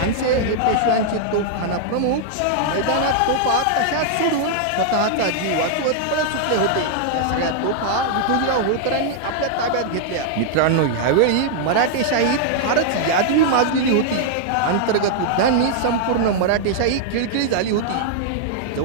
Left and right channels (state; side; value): different; both; correlation -0.01